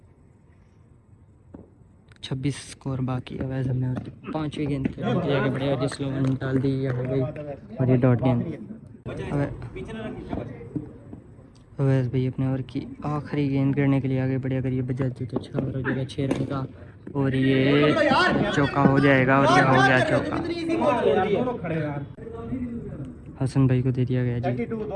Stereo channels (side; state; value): both; identical; correlation 1.00